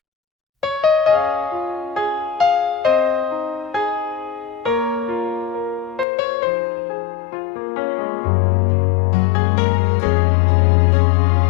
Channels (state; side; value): drops out; right; at 6.1 s